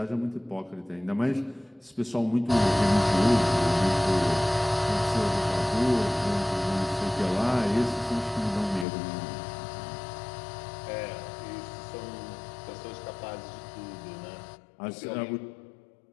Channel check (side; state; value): right; drops out; at 8.8 s